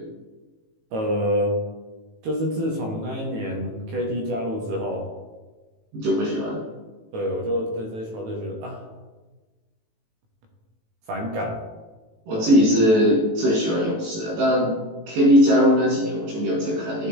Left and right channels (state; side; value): late; left; 18 ms